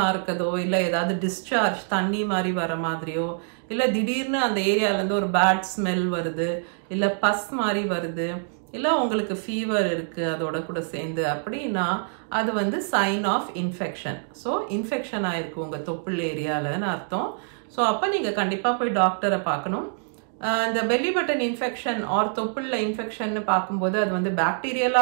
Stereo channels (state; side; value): silent; left; digital silence